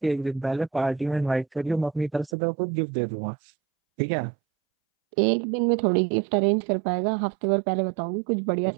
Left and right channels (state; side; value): drops out; left; at 2.3 s